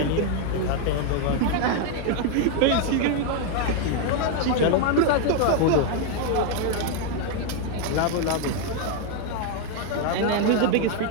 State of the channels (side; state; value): both; different; correlation 0.01